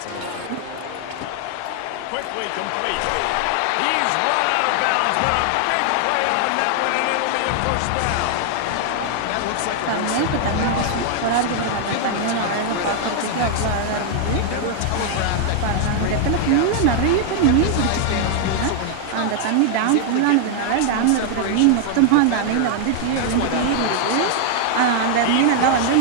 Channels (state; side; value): different; both; correlation 0.00